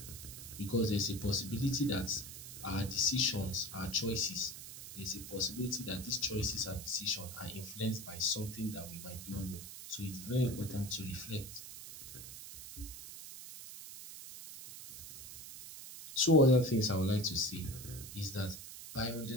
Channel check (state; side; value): noise; right; hiss, 12 dB below the sound